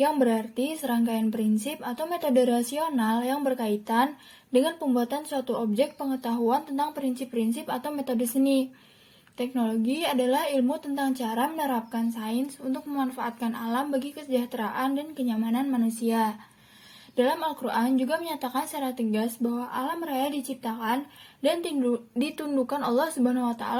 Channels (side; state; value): both; identical; correlation 1.00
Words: berarti serangkaian prinsip atau metode rasional yang berkaitan dengan pembuatan suatu objek pengetahuan tentang prinsip-prinsip atau metode seni. Teknologi adalah ilmu tentang cara menerapkan sains untuk memanfaatkan alam bagi kesejahteraan dan kenyamanan manusia. Dalam Al-Quran juga menyatakan secara tegas bahwa alam raya diciptakan dan ditundukkan Allah Subhanahu wa